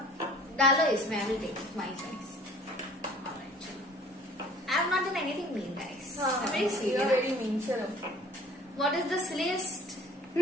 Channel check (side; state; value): both; normal; correlation 0.51